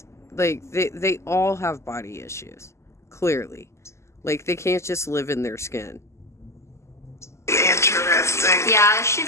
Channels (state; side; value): late; right; 0.13 ms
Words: like, they all have body issues, clearly. Like, they can't just live in their skin. Interesting. Yeah, it should